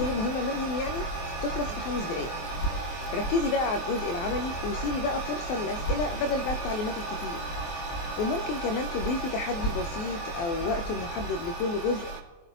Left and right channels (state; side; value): late; right; 24 ms